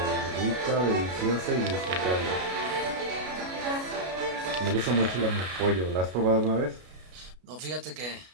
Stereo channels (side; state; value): left; late; 33 ms